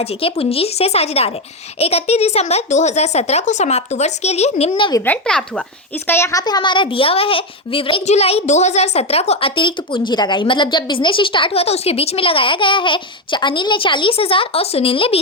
के पूंजी से साझेदार है। 31 दिसंबर 2017 को समाप्त वर्ष के लिए निम्न विवरण प्राप्त हुआ। इसका यहाँ पे हमारा दिया हुआ है विवरण। 1 जुलाई 2017 को अतिरिक्त पूंजी लगाई, मतलब जब बिजनेस स्टार्ट हुआ था उसके बीच में लगाया गया है। अनिल ने 40,000 और सुनील ने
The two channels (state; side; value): normal; both; correlation 0.08